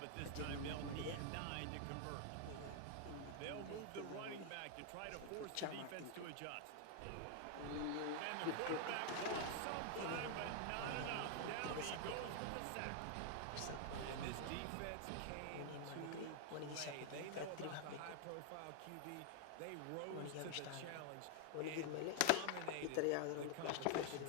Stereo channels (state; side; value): different; both; correlation 0.00